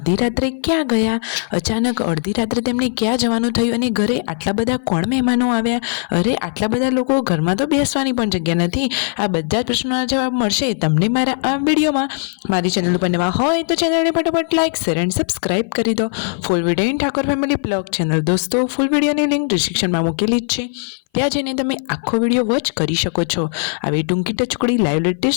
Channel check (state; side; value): silent; right; 59 dB below the other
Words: રાત્રે ક્યાં ગયા, અચાનક અડધી રાત્રે તેમને ક્યાં જવાનું થયું અને ઘરે આટલા બધા કોણ મહેમાનો આવ્યા। અરે આટલા બધા લોકો ઘરમાં તો બેસવાની પણ જગ્યા નથી। આ બધા જ પ્રશ્નોના જવાબ મળશે તમને મારા આ વિડિયોમાં। મારી ચેનલ પર નવા હોય તો ચેનલને ફટાફટ લાઈક શેર એન્ડ સબસ્ક્રાઇબ કરી દો। Full video in Thakor family blog channel દોસ્તો ફૂલ વિડિયોની લિંક ડિસ્ક્રિપ્શનમાં મૂકેલી જ છે, ત્યાં જઈને તમે આખો વિડિયો વોચ કરી શકો છો। આવી ટૂંકી ટચુકડી લાઈવ